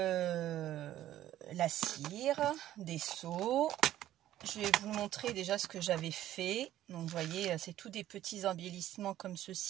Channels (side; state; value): left; quieter; 13.1 dB